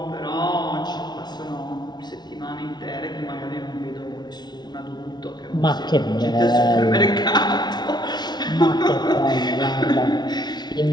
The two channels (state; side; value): late; right; 0.20 ms